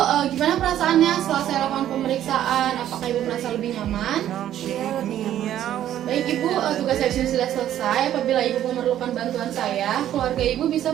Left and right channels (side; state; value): left; quieter; 11.6 dB